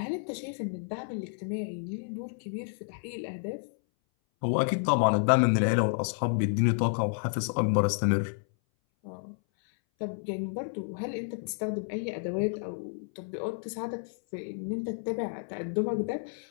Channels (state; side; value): silent; right; 57 dB below the other